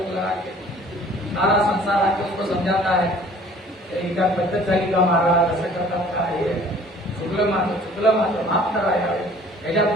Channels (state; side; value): normal; both; correlation 0.52